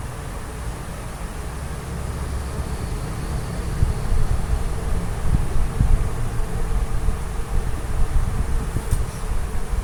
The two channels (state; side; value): identical; both; correlation 1.00